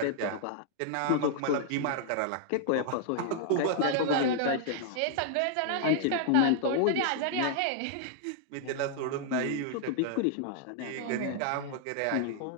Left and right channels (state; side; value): different; both; correlation -0.01